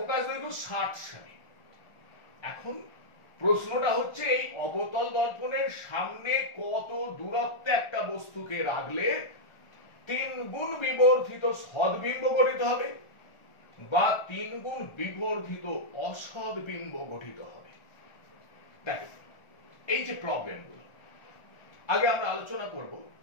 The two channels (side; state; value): right; late; 1.4 ms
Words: দৈর্ঘ্য 60 সেমি। এখন প্রশ্নটা হচ্ছে এই অবতল দর্পণের সামনে কত দূরত্বে একটা বস্তুকে রাখলে 3 গুণ বিবর্ধিত সদ্বিম্ব গঠিত হবে বা 3 গুণ বিবর্ধিত অসদ্বিম্ব গঠিত হবে। দেখো এই যে প্রবলেমগুলো আগে আমরা আলোচনা করব